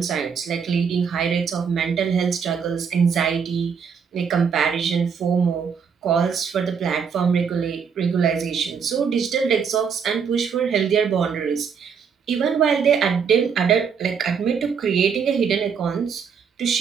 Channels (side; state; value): left; quieter; 6.5 dB